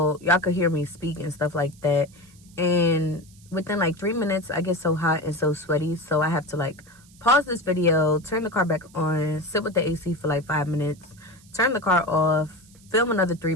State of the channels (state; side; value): noise; right; hiss, 27 dB below the sound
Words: y'all could hear me speak and stuff like that, and within like 3 minutes I get so hot and so sweaty, so I have to like pause this video, turn the car back on, sit with the AC for like 5 minutes, turn the car off, film another 3